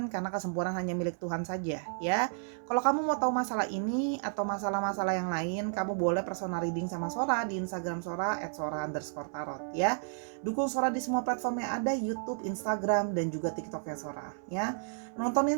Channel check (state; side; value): silent; left; 56 dB below the other